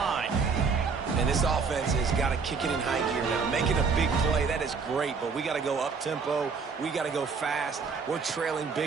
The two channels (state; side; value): quieter; left; 5.1 dB